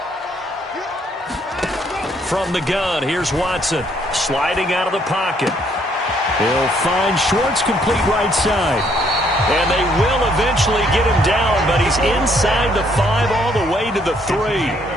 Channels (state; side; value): normal; both; correlation 0.68